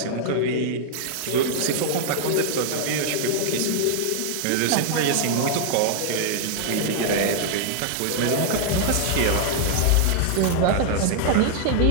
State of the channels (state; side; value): different; both; correlation 0.00